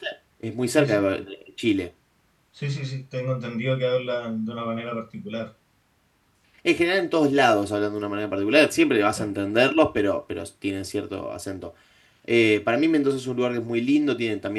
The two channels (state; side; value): identical; both; correlation 1.00